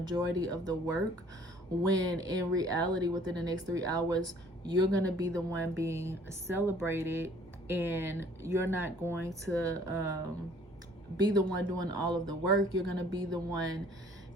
of the work, when in reality within the next 3 hours you're going to be the one being celebrated, and you're not going to be the one doing all of the work. You're going to be the one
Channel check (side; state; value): both; normal; correlation 0.56